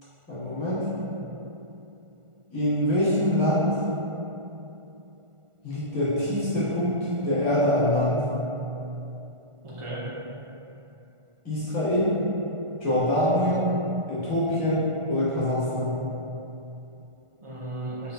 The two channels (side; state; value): left; late; 1.5 ms